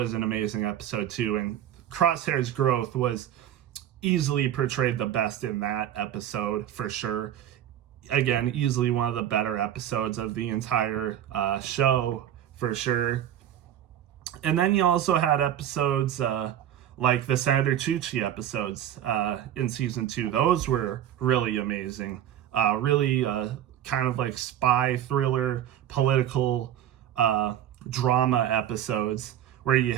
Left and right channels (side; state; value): left; quieter; 11.2 dB